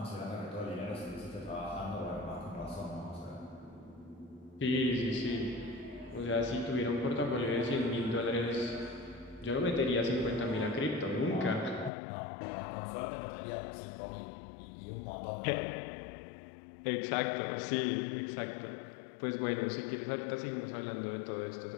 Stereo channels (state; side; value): drops out; right; at 11.9 s